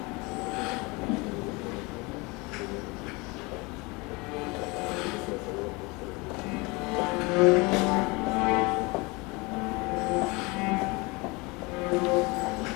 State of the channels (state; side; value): quieter; right; 26.0 dB